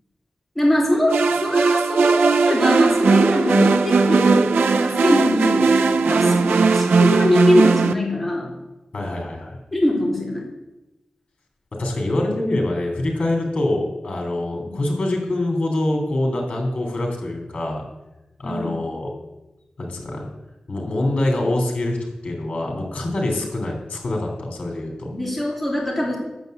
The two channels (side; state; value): both; normal; correlation 0.91